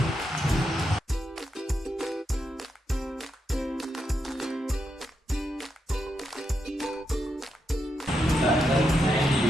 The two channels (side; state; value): both; normal; correlation 0.83